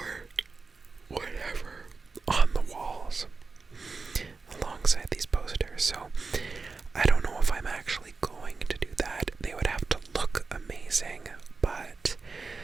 whatever on the walls alongside these posters. So I don't know if I'm actually going to do that. They would have to look amazing, but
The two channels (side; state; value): left; quieter; 4.3 dB